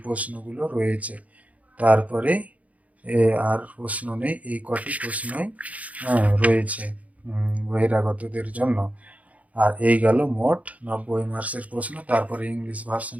প্রশ্নগুলো রয়েছে। তারপরে আর প্রশ্ন নেই, এই কটি প্রশ্নই রয়েছে বহিরাগতদের জন্য। আর এই গেল মোট 90 মার্কসের প্রশ্ন। তারপরে ইংলিশ ভার্সন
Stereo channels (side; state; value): left; late; 0.069 ms